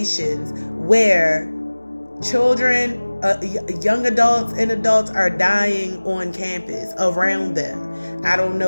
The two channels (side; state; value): both; inverted; correlation -1.00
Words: where children, young adults and adults are dying on campus around them. I don't